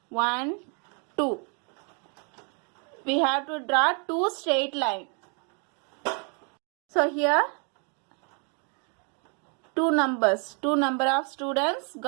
1, 2. We have to draw 2 straight lines. So here two number of students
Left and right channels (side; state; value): left; quieter; 37.3 dB